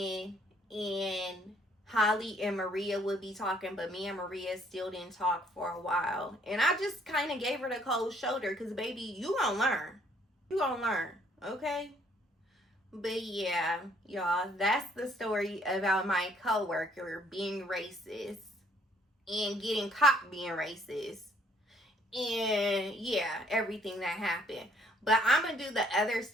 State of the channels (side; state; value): both; normal; correlation 0.63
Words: and Holly and Maria would be talking, but me and Maria still didn't talk for a while. And I just kind of gave her the cold shoulder because, baby, you gonna learn. You gonna learn, okay? But yeah, y'all, that's the story about my coworker being racist and getting caught being racist. And yeah, everything that happened. But I'm gonna do the other